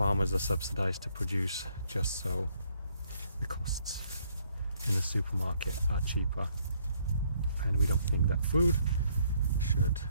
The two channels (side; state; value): both; inverted; correlation -0.69